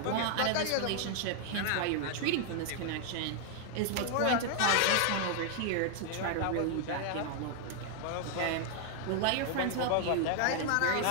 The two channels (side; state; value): both; different; correlation 0.00